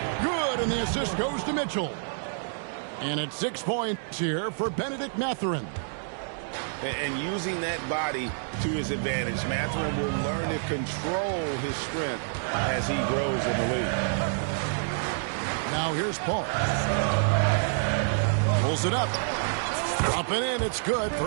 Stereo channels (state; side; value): silent; left; digital silence